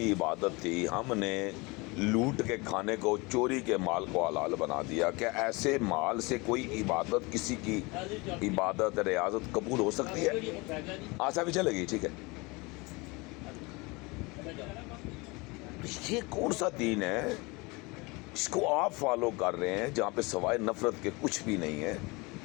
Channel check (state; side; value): quieter; right; 25.7 dB